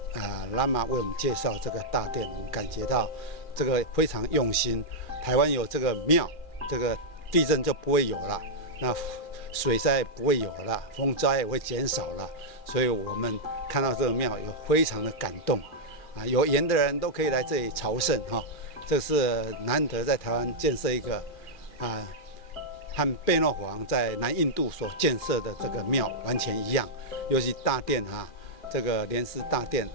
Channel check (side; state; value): right; late; 2.4 ms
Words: 拉玛为我们介绍这个大殿，我们感觉到这个非常用心。台湾有这个庙，这个地震就不会有了，那水灾不会有了，风灾也会减少了，所以我们看到这个庙有非常的感动有缘的人都可以来这里朝圣这是难得在台湾建设一个和贝诺皇在南印度所建设的这个庙完全一样，尤其大殿这个莲师大殿，